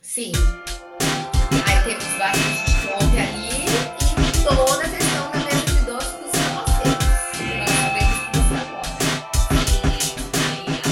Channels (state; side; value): identical; both; correlation 1.00